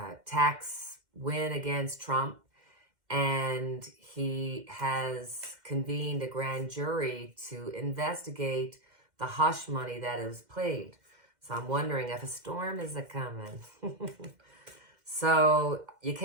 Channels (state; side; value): late; left; 2.0 ms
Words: tax win against Trump. And he has convened a grand jury to investigate the hush money that was paid. So I'm wondering if a storm is a-coming. So you